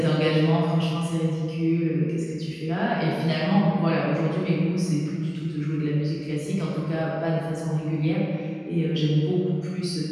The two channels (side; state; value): both; identical; correlation 1.00